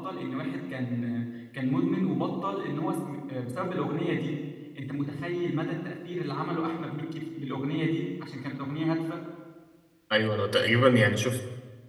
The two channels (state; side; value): identical; both; correlation 1.00